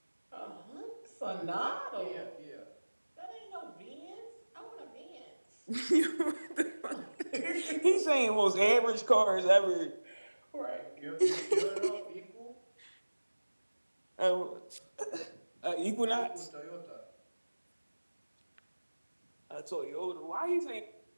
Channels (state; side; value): inverted; both; correlation -1.00